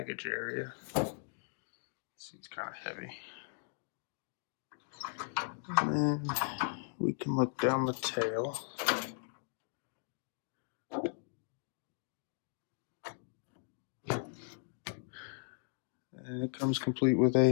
area. Seat's kind of heavy. And we can look down the tail. And it comes complete with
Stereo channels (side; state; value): right; silent; digital silence